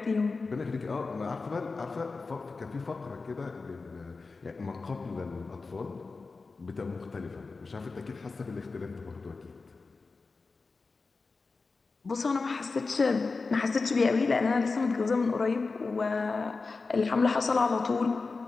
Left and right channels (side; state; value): right; quieter; 4.1 dB